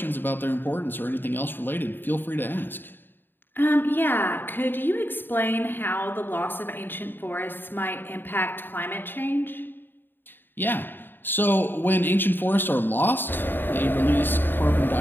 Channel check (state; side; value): late; right; 0.095 ms